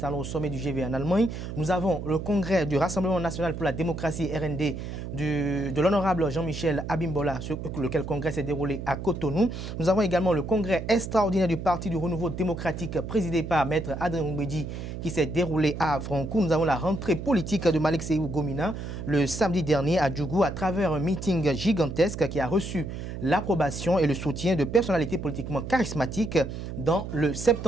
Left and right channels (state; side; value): noise; right; hum, 7 dB below the sound